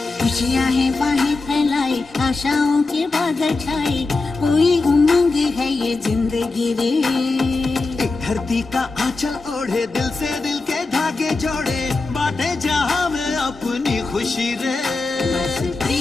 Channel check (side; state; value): right; quieter; 3.6 dB